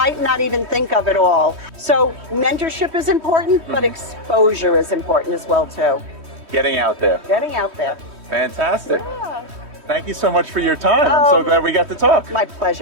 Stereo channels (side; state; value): left; late; 3.1 ms